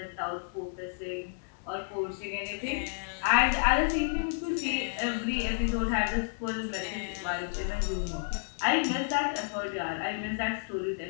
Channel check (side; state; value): right; silent; digital silence